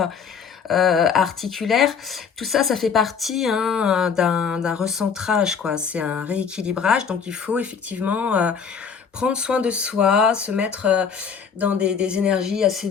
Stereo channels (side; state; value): right; quieter; 6.4 dB